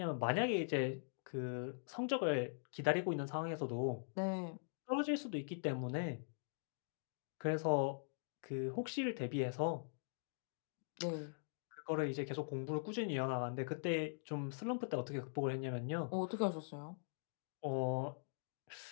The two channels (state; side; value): silent; right; digital silence